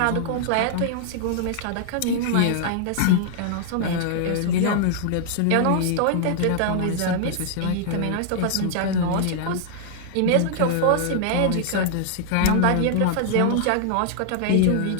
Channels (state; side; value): different; both; correlation -0.01